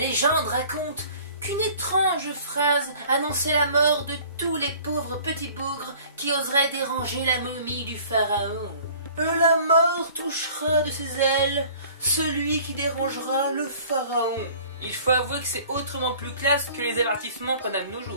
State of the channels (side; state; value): both; inverted; correlation -0.50